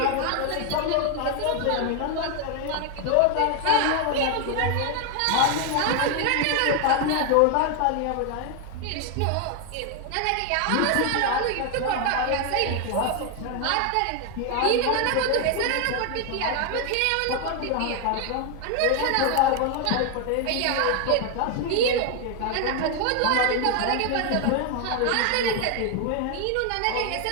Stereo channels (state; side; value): different; both; correlation 0.01